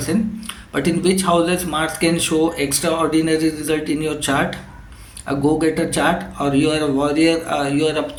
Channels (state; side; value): identical; both; correlation 1.00